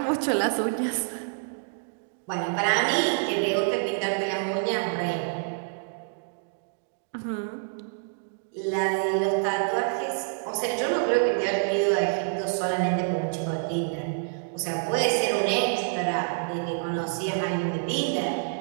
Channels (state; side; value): silent; left; digital silence